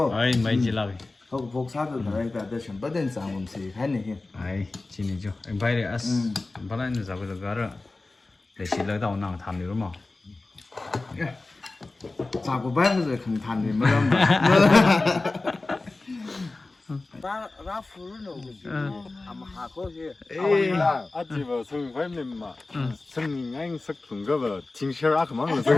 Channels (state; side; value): quieter; right; 3.3 dB